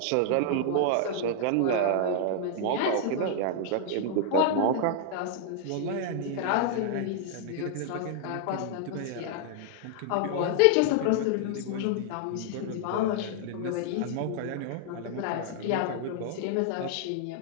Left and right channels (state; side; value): different; both; correlation 0.00